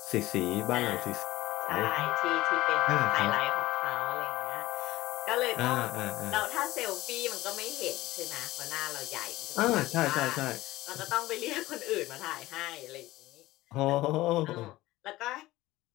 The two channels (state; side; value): quieter; right; 17.6 dB